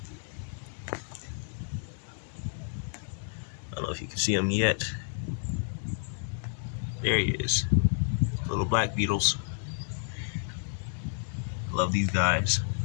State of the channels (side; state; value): right; silent; digital silence